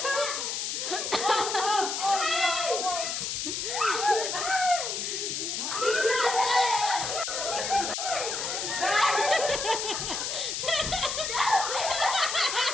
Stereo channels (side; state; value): left; noise; hiss, 2 dB below the sound